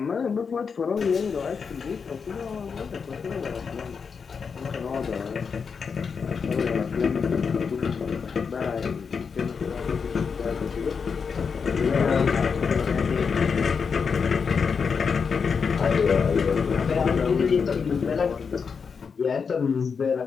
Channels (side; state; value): right; quieter; 5.8 dB